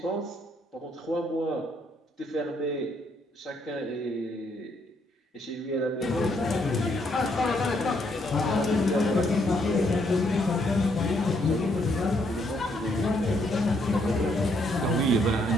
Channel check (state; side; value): normal; both; correlation 0.72